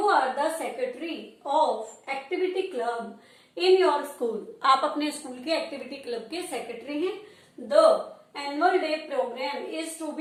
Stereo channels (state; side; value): identical; both; correlation 1.00